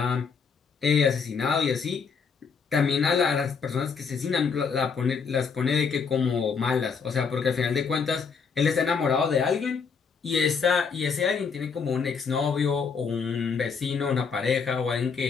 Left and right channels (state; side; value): quieter; right; 5.7 dB